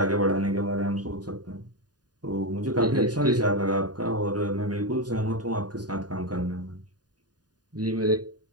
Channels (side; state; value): left; late; 0.69 ms